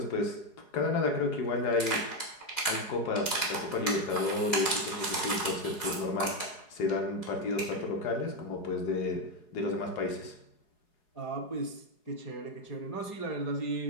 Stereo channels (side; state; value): right; late; 4.8 ms